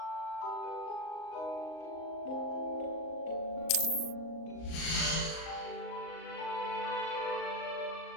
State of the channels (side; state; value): right; late; 38 ms